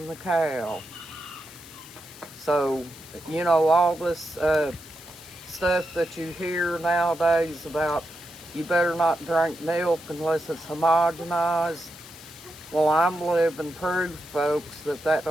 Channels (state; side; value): noise; left; hiss, 19 dB below the sound